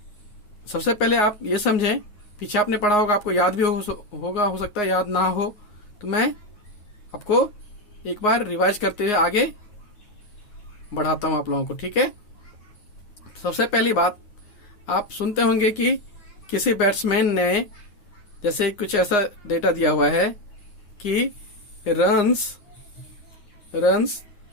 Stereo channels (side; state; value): right; late; 9.6 ms